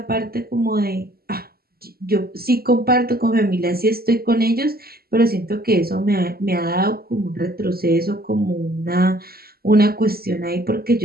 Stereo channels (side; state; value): left; late; 0.45 ms